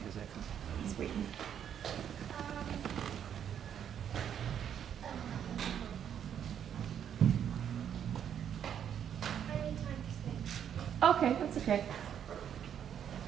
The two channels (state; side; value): quieter; left; 9.0 dB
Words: He's waiting. Okay, that's okay.